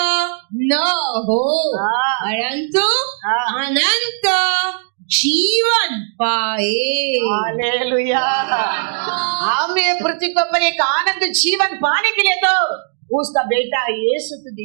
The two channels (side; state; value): left; silent; 68 dB below the other